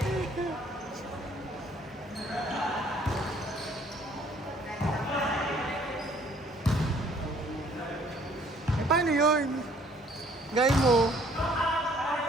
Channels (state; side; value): normal; both; correlation 0.59